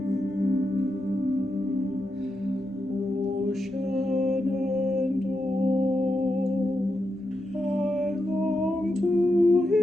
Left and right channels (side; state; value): both; normal; correlation 0.86